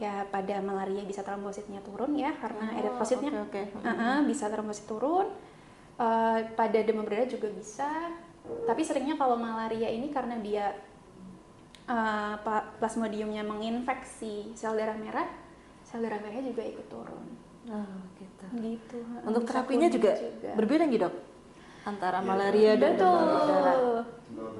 ya pada malaria bisa trombositnya turun ya karena eritrositnya oke. bisa trombosit turun. Pada demam berdarah juga bisa. Tapi seringnya kalau malaria ini karena dia plasmodiumnya menginfeksi sel darah merahnya juga ikut turun. Oh, gitu. Gitu. Untuk Bisa terapinya kuning juga berbeda nggih, Dok? Antara malaria dan demam berdarah. Betul. Demam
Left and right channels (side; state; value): both; identical; correlation 1.00